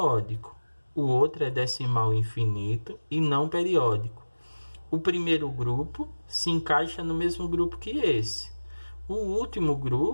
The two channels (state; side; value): inverted; both; correlation -1.00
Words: O outro é decimal infinito e não periódico. O primeiro grupo se encaixa no mesmo grupo que esse. O último